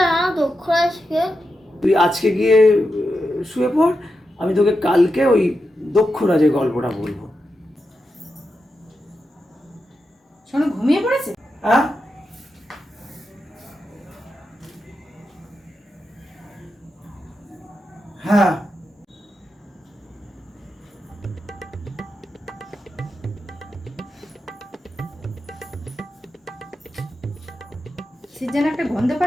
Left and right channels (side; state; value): both; normal; correlation 0.88